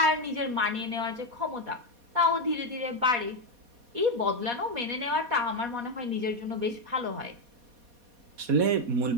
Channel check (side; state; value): left; late; 4.2 ms